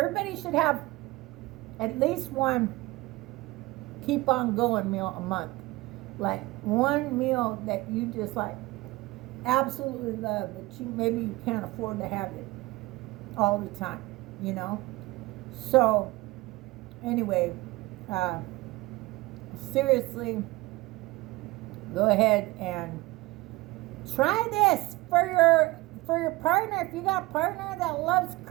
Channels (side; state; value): left; quieter; 20.7 dB